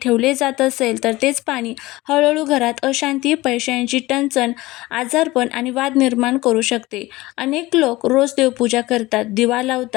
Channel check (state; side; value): quieter; right; 19.5 dB